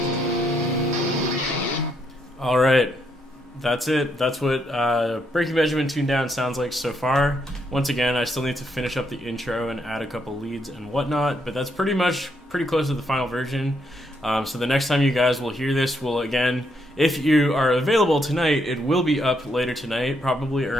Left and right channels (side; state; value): both; normal; correlation 0.76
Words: All right. That's it. That's what Breaking Benjamin tuned down sounds like so far. Once again, I still need to finish up the intro and add a couple leads and whatnot, but that's pretty close to the final version. So the next time you guys will hear this will, again, if you are available tonight, it will be up later tonight, probably